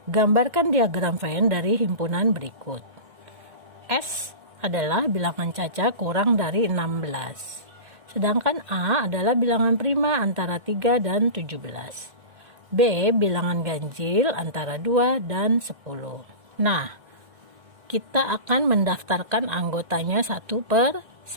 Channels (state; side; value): late; left; 2.1 ms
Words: Gambarkan diagram Venn dari himpunan berikut. S adalah bilangan caca kurang dari 16. Sedangkan A adalah bilangan prima antara 3 dan 17. B bilangan ganjil antara 2 dan 10. Nah, kita akan mendaftarkan anggotanya satu per